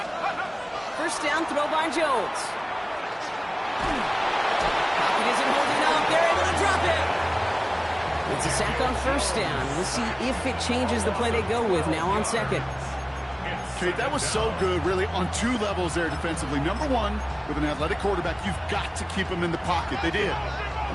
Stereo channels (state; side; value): identical; both; correlation 1.00